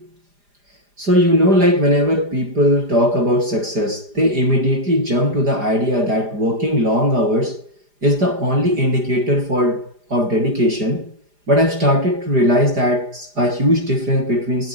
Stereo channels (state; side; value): late; left; 4.9 ms